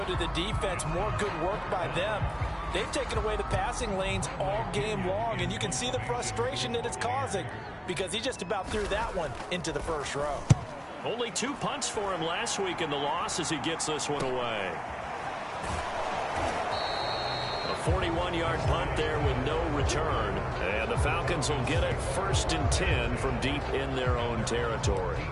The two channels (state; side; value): identical; both; correlation 1.00